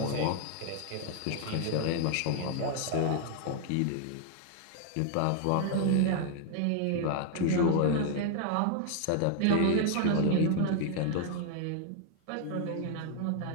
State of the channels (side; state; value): both; different; correlation 0.00